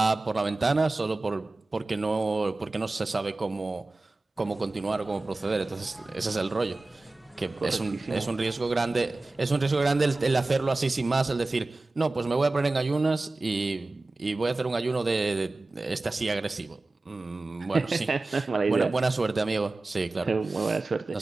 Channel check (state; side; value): quieter; left; 3.2 dB